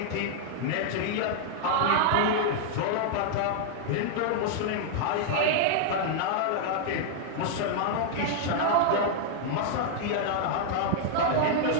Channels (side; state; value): both; different; correlation 0.00